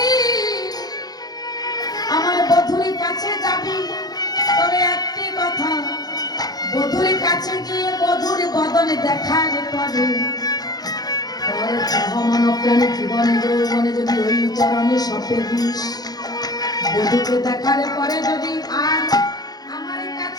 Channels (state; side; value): late; right; 0.19 ms